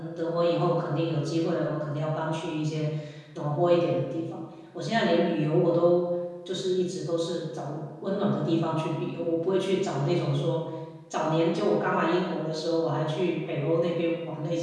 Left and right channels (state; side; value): identical; both; correlation 1.00